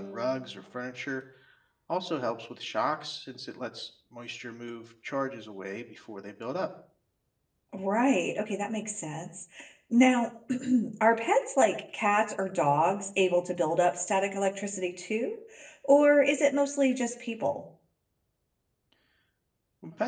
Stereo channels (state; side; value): identical; both; correlation 1.00